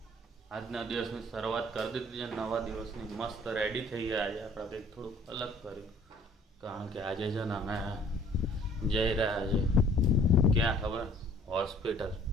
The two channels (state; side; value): normal; both; correlation 0.55